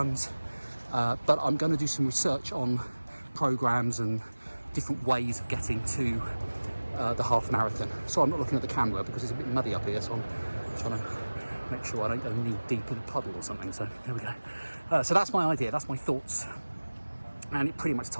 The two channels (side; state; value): both; inverted; correlation -1.00